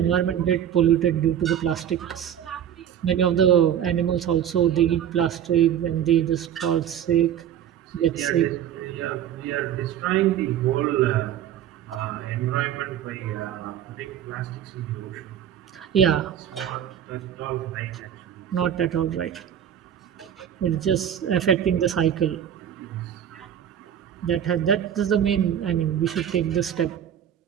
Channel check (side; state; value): left; quieter; 9.8 dB